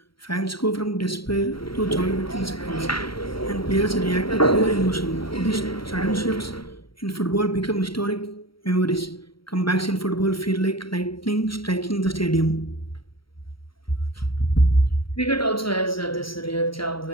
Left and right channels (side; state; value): right; late; 0.74 ms